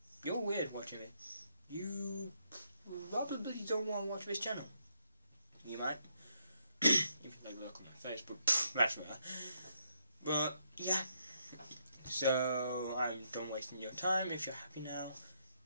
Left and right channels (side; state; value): both; inverted; correlation -0.75